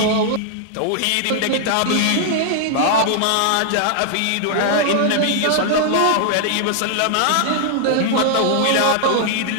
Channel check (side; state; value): both; different; correlation -0.01